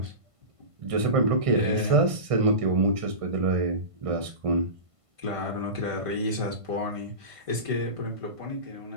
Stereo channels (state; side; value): late; left; 1.5 ms